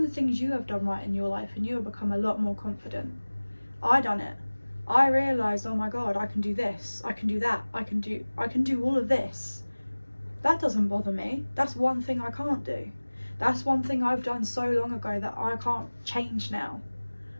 the things you have done right in your life and you'll become a lot more confident. I done it. I realised, oh my God, I can do this, I can do that, I can do all of this. That doesn't bother me. That's one thing I can't do. That's one thing I've done so long ago that I can't change now.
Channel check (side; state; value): both; inverted; correlation -1.00